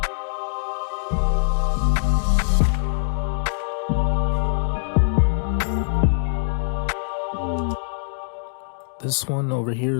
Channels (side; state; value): right; silent; digital silence